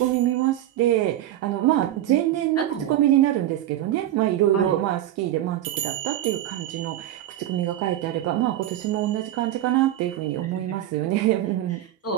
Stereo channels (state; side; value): quieter; left; 13.0 dB